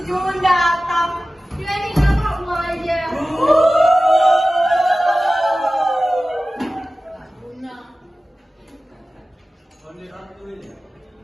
Jun datang. Dia ini kenapa mau aja?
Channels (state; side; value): normal; both; correlation 0.96